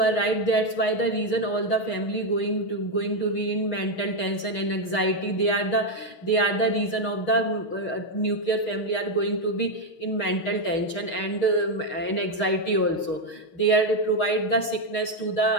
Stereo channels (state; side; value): late; right; 6.3 ms